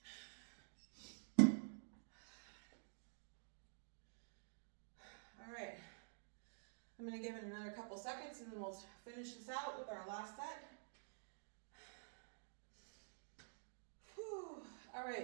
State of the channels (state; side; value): silent; left; digital silence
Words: All right. I'm going to give it another couple seconds and then we'll finish this out with our last set. Whew. All